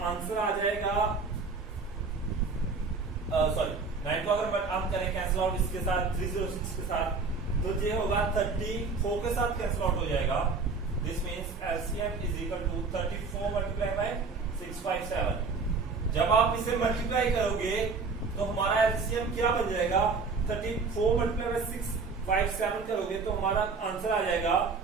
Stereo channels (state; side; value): quieter; left; 4.5 dB